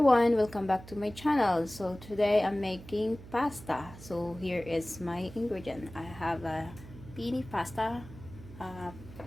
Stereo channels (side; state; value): right; noise; hum, 16 dB below the sound